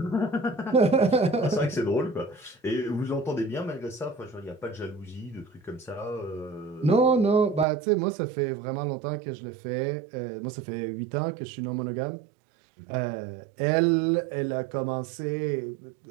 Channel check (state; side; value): drops out; left; at 7.7 s